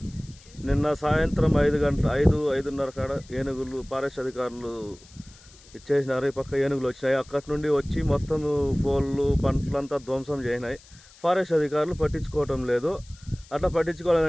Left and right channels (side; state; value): left; noise; hiss, 24 dB below the sound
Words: నిన్న సాయంత్రం 5:30 కాడ ఏనుగులు ఫారెస్ట్ అధికారులు ఇచ్చేసినారు. ఈ పక్క ఏనుగులు వచ్చినాయి. అక్కడి నుండి వచ్చి మొత్తం పోళ్ళు పంటలంతా ధ్వంసం చేసినాయి. ఫారెస్ట్ అధికారులు పట్టించుకోవటం లేదు. అట్లా